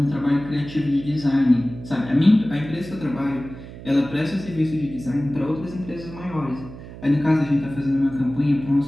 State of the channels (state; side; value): noise; right; hum, 14 dB below the sound